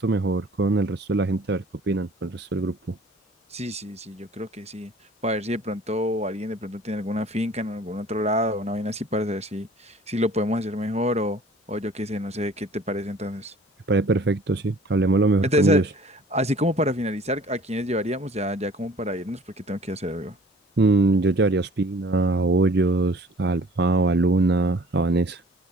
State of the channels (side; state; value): both; normal; correlation 0.51